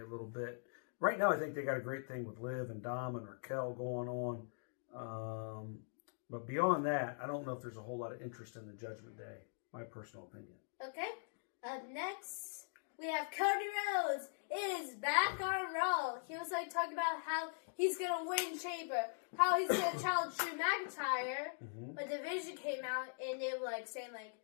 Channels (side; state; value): right; silent; digital silence